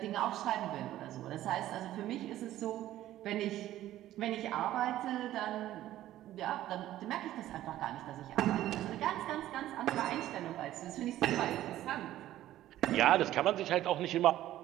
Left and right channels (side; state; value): left; quieter; 13.7 dB